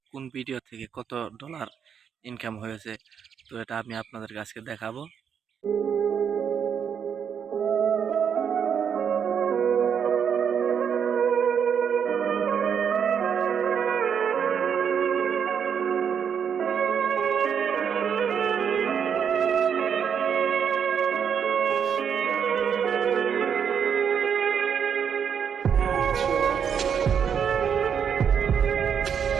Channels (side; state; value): left; quieter; 7.6 dB